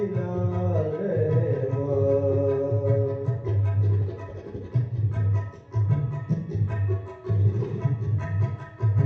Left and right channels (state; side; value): identical; both; correlation 1.00